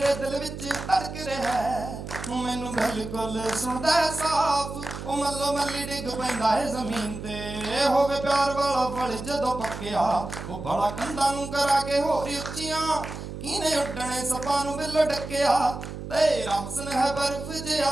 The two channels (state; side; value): noise; right; hum, 9 dB below the sound